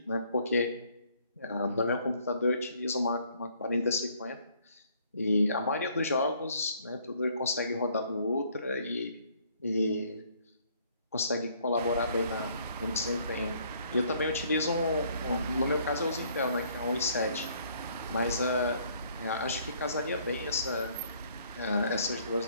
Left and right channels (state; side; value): inverted; both; correlation -0.63